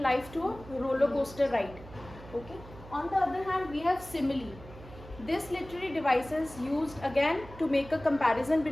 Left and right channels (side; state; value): right; noise; hum, 17 dB below the sound